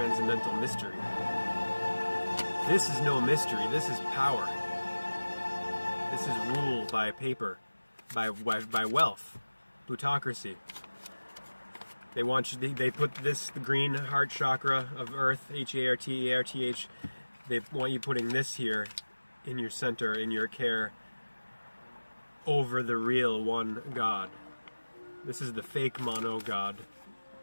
mystery. This is no mystery, this is power. This is rule by paper, by wealth, plutocracy. They put this, the green heart chakra of Earth, H-A-R-T-A-R-T-H, they want you putting this here in your center, in your care, over the real one God. This is the fake mono God.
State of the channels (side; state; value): both; inverted; correlation -1.00